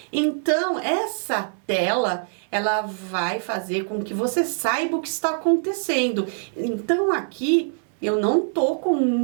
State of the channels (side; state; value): left; silent; 63 dB below the other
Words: Então, essa tela, ela vai fazer com que você saiba o que está acontecendo. Então, aqui, eu não tô com